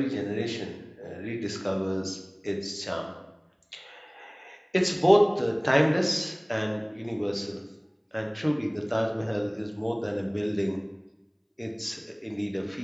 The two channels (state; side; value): identical; both; correlation 1.00